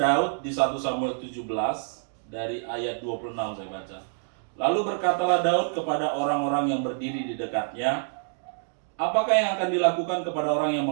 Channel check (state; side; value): silent; left; digital silence